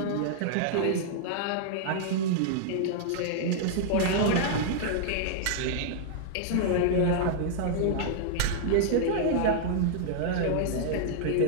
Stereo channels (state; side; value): different; both; correlation -0.01